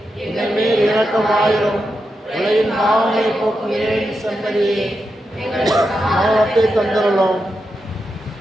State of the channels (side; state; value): both; normal; correlation 0.87